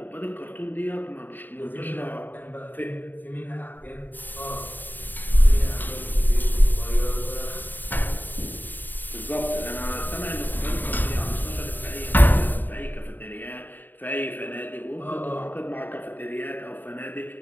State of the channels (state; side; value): late; right; 0.090 ms